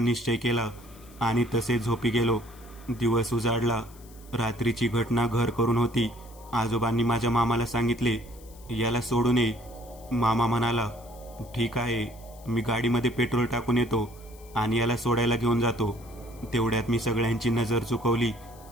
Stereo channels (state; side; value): noise; left; hiss, 24 dB below the sound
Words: केला आणि तसेच झोपी गेलो. दिवस उजाडला. रात्रीची घटना घर करून होती. आजोबांनी माझ्या मामाला सांगितले, याला सोडून ये. मामा म्हणाला, ठीक आहे, मी गाडीमध्ये पेट्रोल टाकून येतो आणि याला सोडायला घेऊन जातो. तेवढ्यात मी सगळ्यांची नजर चुकवली